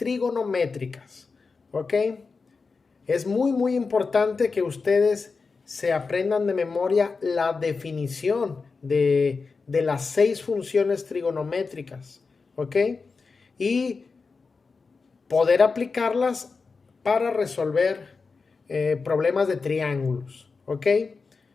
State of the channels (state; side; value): quieter; right; 4.5 dB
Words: ¿ok? Es muy importante que ustedes se aprendan de memoria la definición de las 6 funciones trigonométricas, ¿ok? Y poder aplicarlas para resolver problemas de triángulos, ¿ok?